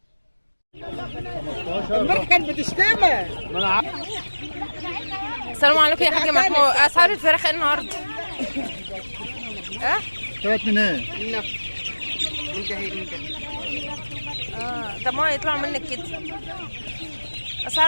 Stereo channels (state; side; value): inverted; both; correlation -1.00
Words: المرة كانت بتشتغل. السلام عليكم يا حاج محمود، اسعار الفراخ ايه النهارده؟ طلعت من ايه؟ طب ما يطلعوا منك كده.